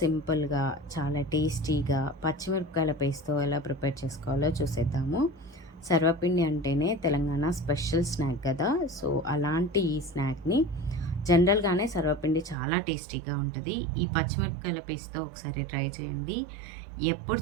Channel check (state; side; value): drops out; left; at 12.6 s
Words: చాలా టేస్టీగా పచ్చిమిరపకాయల పేస్ట్తో ఎలా ప్రిపేర్ చేసుకోవాలో చూసేద్దాము. సర్వపిండి అంటేనే తెలంగాణ స్పెషల్ స్నాక్ కదా. సో అలాంటి ఈ స్నాక్ని జనరల్గానే సర్వపిండి చాలా టేస్టీగా ఉంటుంది. ఈ పచ్చిమిరపకాయల పేస్ట్తో ఒకసారి ట్రై చేయండి. ఎప్పుడు